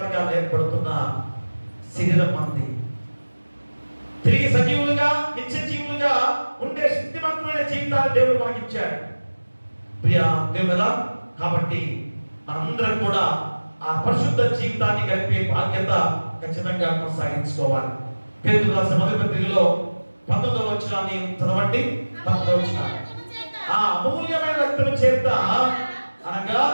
ఏర్పడుతున్న శరీరం మంది తిరిగి సజీవులుగా నిత్య జీవులుగా ఉండే శక్తివంతమైన జీవితాన్ని దేవుడు మనకి ఇచ్చాడు. ప్రియా దేవుడా, కాబట్టి మనందరం కూడా ఆ పరిశుద్ధ జీవితాన్ని గడిపే బాధ్యత ఖచ్చితంగా కొనసాగించుకోవాలి. పేతురు రాసిన మొదటి పత్రికలో 19వ వచనాన్ని చదవండి. 19వ వచనం. ఆ అమూల్యమైన రక్తము చేత అనగా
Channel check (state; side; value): inverted; both; correlation -1.00